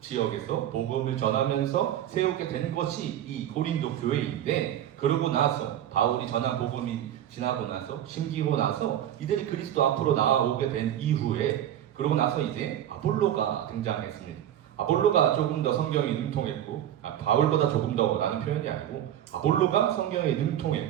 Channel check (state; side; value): quieter; left; 11.3 dB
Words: 복음을 전하면서 세우게 된 것이 이 고린도 교회인데 그러고 나서 바울이 전한 복음이 지나고 나서 심기고 나서 이들이 그리스도 앞으로 나아오게 된 이후에 그러고 나서 이제 아볼로가 등장했습니다. 아볼로가 조금 더 성경에 능통했고 바울보다 조금 더라는 표현이 아니고 아볼로가 성경에